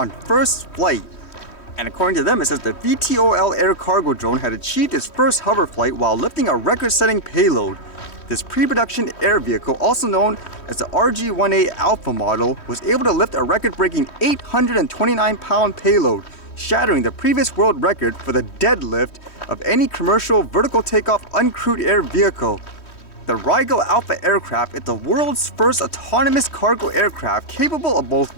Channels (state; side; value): late; right; 3.1 ms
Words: first flight. And according to them, it says the VTOL air cargo drone had achieved its first hover flight while lifting a record-setting payload. This pre-production air vehicle, also known as the RH-1-A Alpha model, was able to lift a record-breaking 829-pound payload, shattering the previous world record for the deadlift of any commercial vertical takeoff uncrewed air vehicle. The Rhaegal Alpha aircraft is the world's first autonomous cargo aircraft capable of both